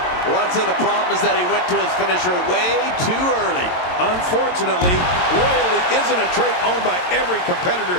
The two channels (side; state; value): right; late; 22 ms